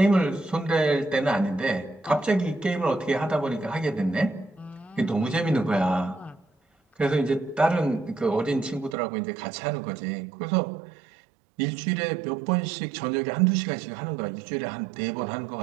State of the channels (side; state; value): left; drops out; at 9.0 s